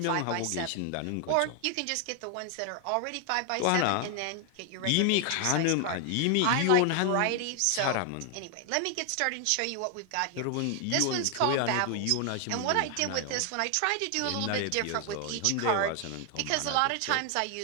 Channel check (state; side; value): different; both; correlation 0.00